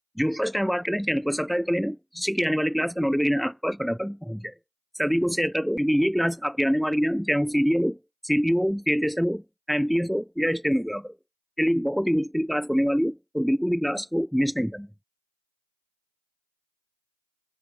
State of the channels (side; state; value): both; identical; correlation 1.00